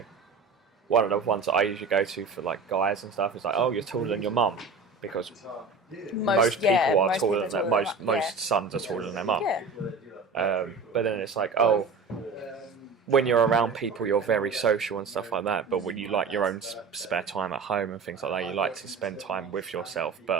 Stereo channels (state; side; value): quieter; left; 4.4 dB